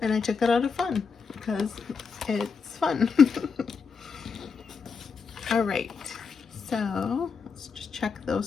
I took that out of fun because it's fun. All right, so let's just check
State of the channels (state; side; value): quieter; right; 5.5 dB